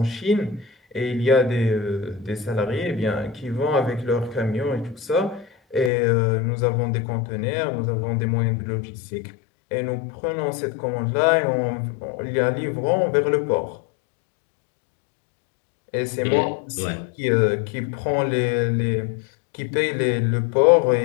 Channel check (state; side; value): drops out; right; at 5.9 s